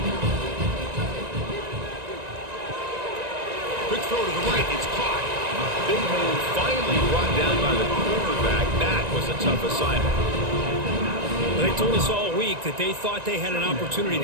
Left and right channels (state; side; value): late; left; 1.9 ms